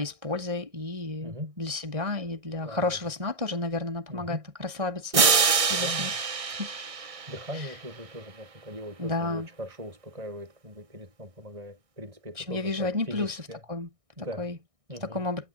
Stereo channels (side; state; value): left; late; 1.6 ms